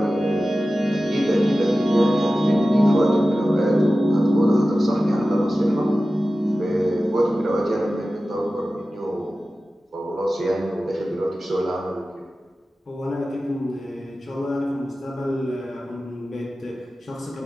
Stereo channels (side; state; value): both; normal; correlation 0.95